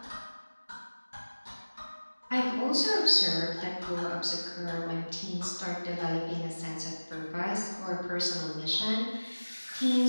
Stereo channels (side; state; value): both; inverted; correlation -1.00